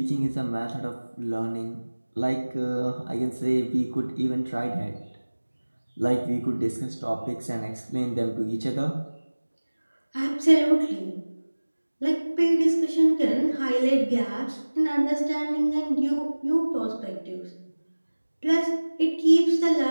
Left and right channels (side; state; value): both; inverted; correlation -1.00